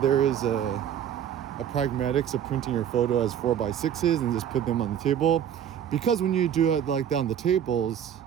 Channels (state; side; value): quieter; left; 9.4 dB